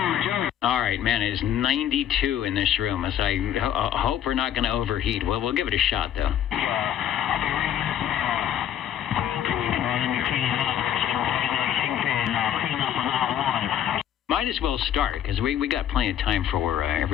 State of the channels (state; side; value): quieter; right; 10.4 dB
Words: All right, man, it is 92 in this room. As I hope we're not going to overheat. Well, we'll give it a shot, though. Might as well start, because we got plenty of time for